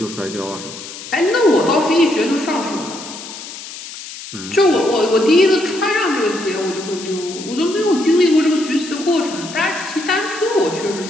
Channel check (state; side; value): noise; left; hiss, 12 dB below the sound